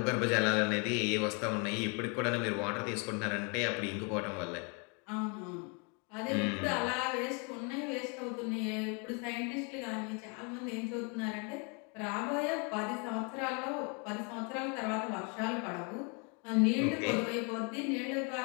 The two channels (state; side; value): quieter; right; 34.3 dB